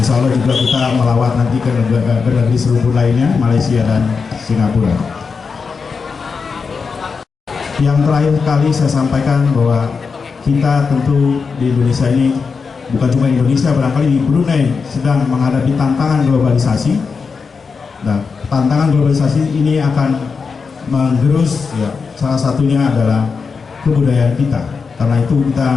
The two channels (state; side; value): quieter; right; 5.2 dB